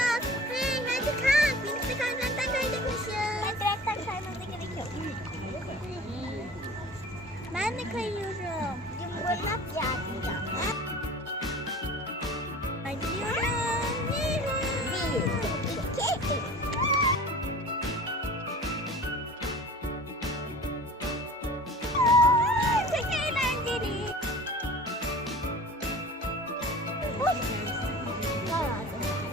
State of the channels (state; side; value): normal; both; correlation 0.40